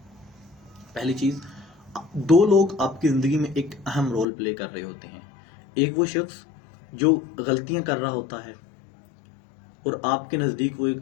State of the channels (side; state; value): right; drops out; at 4.2 s